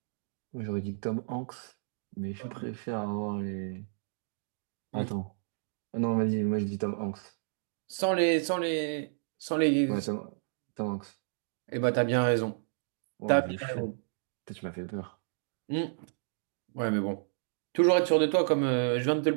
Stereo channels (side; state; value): left; silent; digital silence